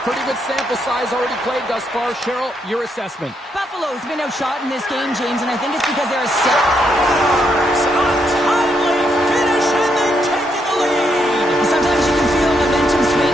pretty good sample size already played thus far. Cheryl, your assessment. Buffalo's been outshot in this game, James, and I think it's because they're a set. Timely finish, and they've taken the lead. Sometimes you can feel momentum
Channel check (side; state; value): both; normal; correlation 0.77